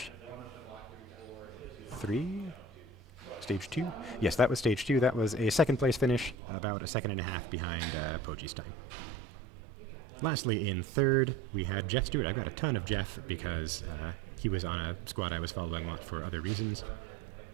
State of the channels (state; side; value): drops out; left; at 6.4 s